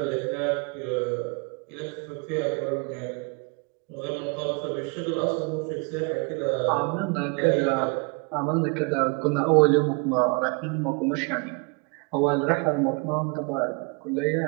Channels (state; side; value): quieter; left; 32.4 dB